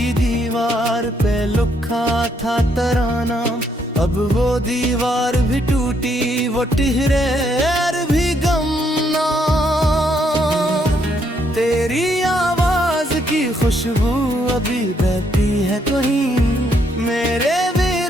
दीवार पे लिखा था तराना अब वो दीवार भी टूटी वो टिहरे भी गमना तेरी आवाज की खुशबू अभी बहती है कहीं मेरे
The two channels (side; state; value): both; normal; correlation 0.73